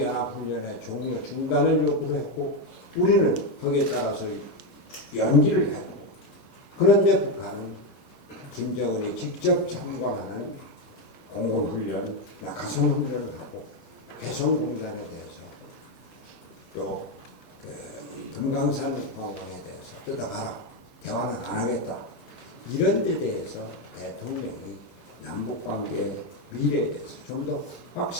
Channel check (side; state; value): right; late; 13 ms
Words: 종료 중단을 요구를 했고 우리는 거기에 따라서 연기를 했고 그런데 북한은 김정은이 직접 참관하는 공군훈련, 낙하산훈련을 하고 개성공단에 대해서 또 금강산 관광에 대해서 뜯어가라. 대화는 안 하겠다. 이런 데 대해서 대통령이 남북관계의 미래에 대해서 좀 더